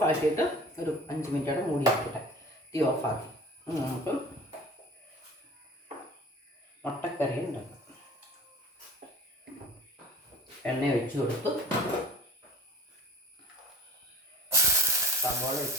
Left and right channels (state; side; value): normal; both; correlation 0.44